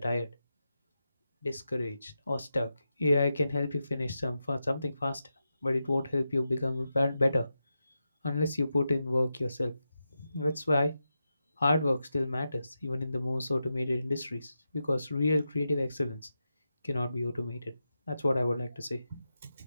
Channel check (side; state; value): both; inverted; correlation -0.89